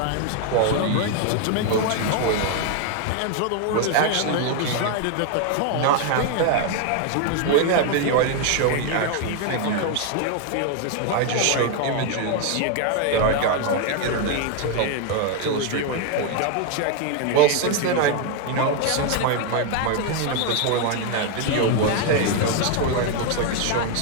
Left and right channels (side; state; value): both; different; correlation 0.01